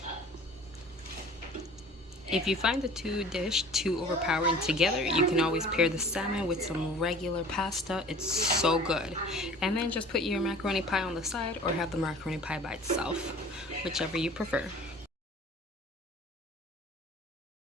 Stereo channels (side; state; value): both; normal; correlation 0.46